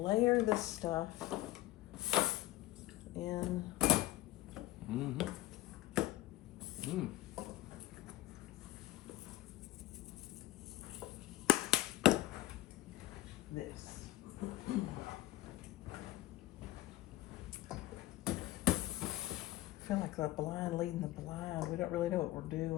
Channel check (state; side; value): quieter; right; 16.7 dB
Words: this stuff in. Mm-hmm. Mm. This. I feel like the blind leading the blind. We don't really know what we're